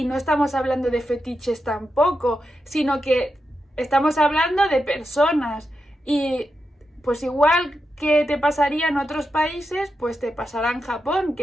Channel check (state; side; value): normal; both; correlation 0.87